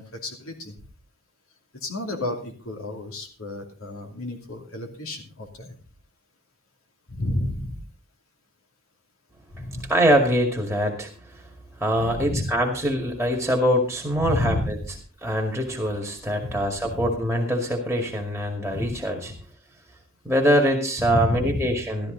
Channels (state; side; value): normal; both; correlation 0.59